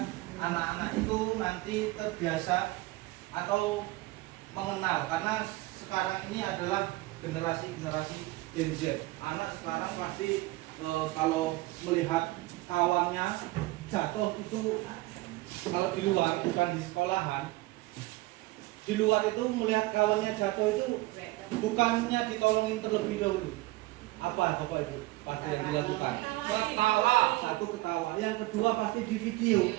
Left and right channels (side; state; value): left; quieter; 19.9 dB